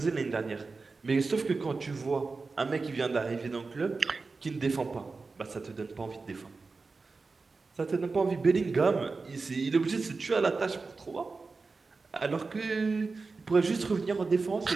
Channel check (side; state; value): left; quieter; 4.1 dB